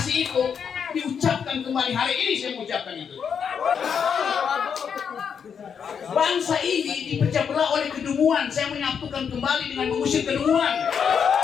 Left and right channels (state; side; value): quieter; right; 7.1 dB